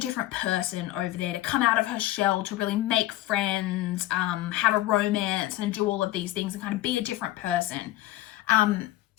person over there, to come out of her shell, to really make friends, have a romance, and do all of these things, and kind of be a different person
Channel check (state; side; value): quieter; right; 15.7 dB